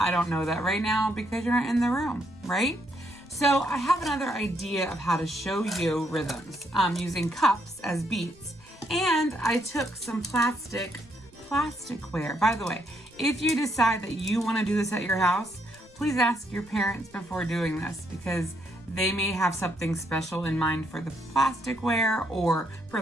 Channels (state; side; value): noise; right; rumble, 26 dB below the sound